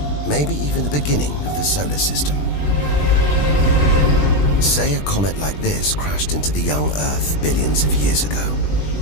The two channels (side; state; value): right; late; 20 ms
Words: Maybe even the beginning of the solar system. Say a comet like this crashed into the young Earth billions of years ago.